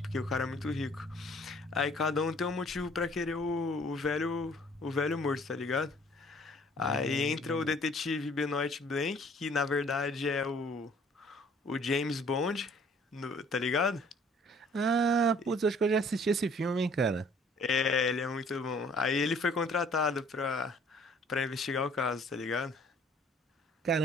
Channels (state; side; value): normal; both; correlation 0.56